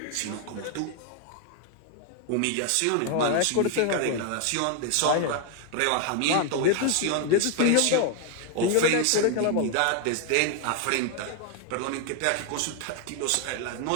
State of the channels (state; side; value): different; both; correlation 0.00